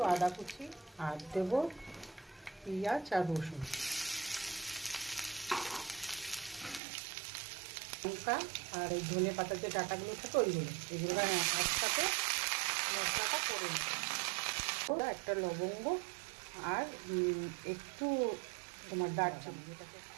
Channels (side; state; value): left; drops out; at 6.8 s